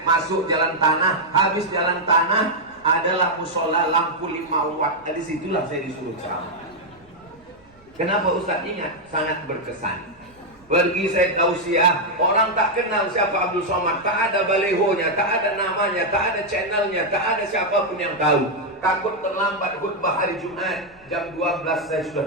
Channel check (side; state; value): right; noise; rumble, 29 dB below the sound